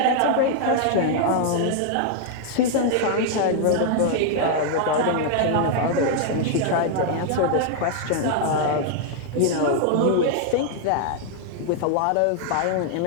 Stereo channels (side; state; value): both; different; correlation 0.00